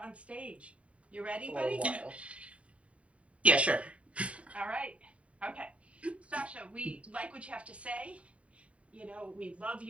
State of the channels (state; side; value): late; left; 0.064 ms